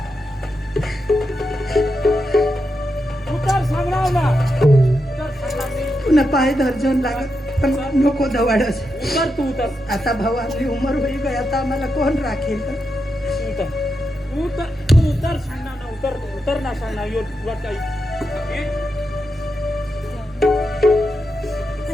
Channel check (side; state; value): both; normal; correlation 0.86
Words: उतर सांगणार ना उतर सांगणार मी. पुन्हा पाय धरजून लागत पण नको दवाडस. उतर तू उतर आता भाऊ आपली उमर होई गई, आता आम्हाला कोण राखेल? तू उतर उतर तू उतर सांगणार ना उतर उतर ना सांगणार यो तुला काही